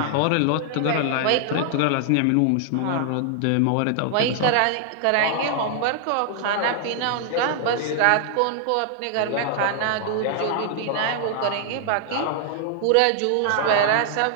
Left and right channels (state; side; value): different; both; correlation 0.00